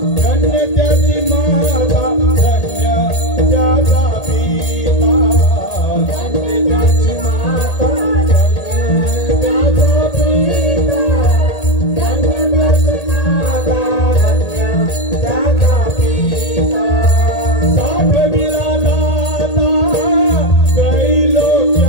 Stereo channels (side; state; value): right; late; 1.8 ms